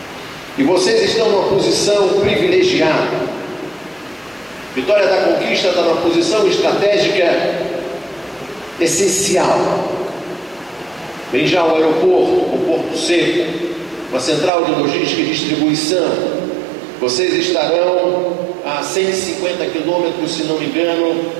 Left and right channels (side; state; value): left; drops out; at 14.5 s